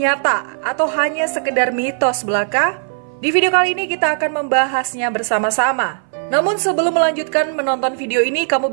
atau hanya sekedar mitos belaka? Di video kali ini kita akan membahasnya bersama-sama. Namun sebelum melanjutkan menonton video ini, kamu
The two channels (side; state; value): left; silent; 59 dB below the other